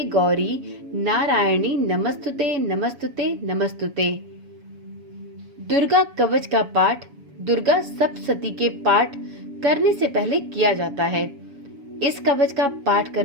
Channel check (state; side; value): late; left; 7.1 ms